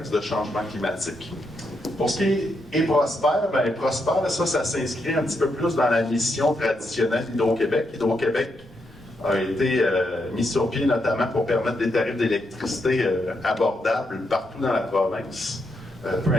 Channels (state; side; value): normal; both; correlation 0.81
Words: de changement climatique. Pour ce qui est Prospère, Prospère, ça s'inscrit un petit peu plus dans la mission traditionnelle d'Hydro-Québec. Hydro-Québec a été mis sur pied notamment pour permettre des tarifs d'électricité abordables partout dans la province. Peu